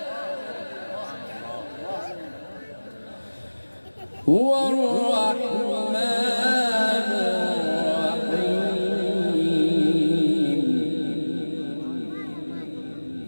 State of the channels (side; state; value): both; inverted; correlation -1.00